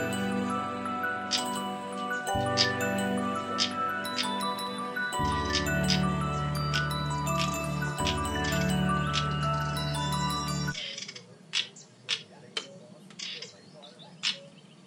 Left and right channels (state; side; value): identical; both; correlation 1.00